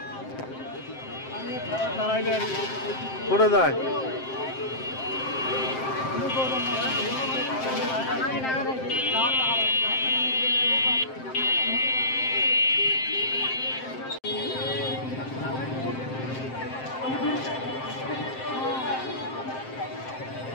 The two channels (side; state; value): right; late; 7.6 ms